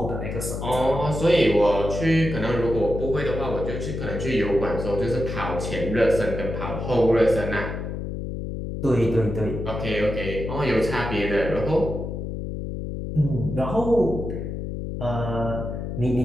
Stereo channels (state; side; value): noise; left; hum, 5 dB below the sound